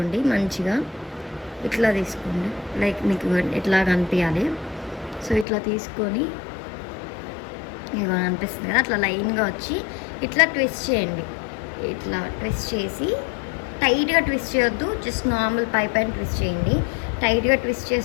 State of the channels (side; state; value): right; drops out; at 5.5 s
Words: మంచిగా ఇట్లా తీసుకోండి, లైక్ మీకు ఇట్లా కనిపించాలి. సో ఇట్లా తీసుకొని ఇక అనిపిస్తుంది కదా, అట్లా లైన్గా వచ్చి ఇట్లా ట్విస్ట్ చేయండి. ఇట్లా ట్విస్ట్ చేసి టైట్గా ట్విస్ట్ చేయొద్దు, జస్ట్ నార్మల్ పై పైన ట్విస్ట్ చేయండి. టైట్గా ట్విస్ట్